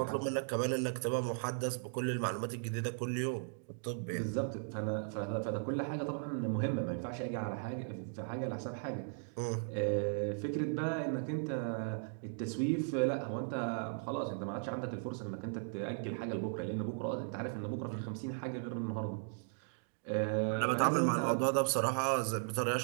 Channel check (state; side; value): silent; left; digital silence